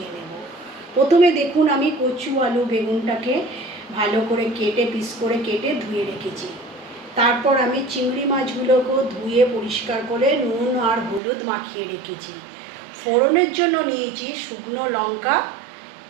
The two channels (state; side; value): drops out; left; at 11.2 s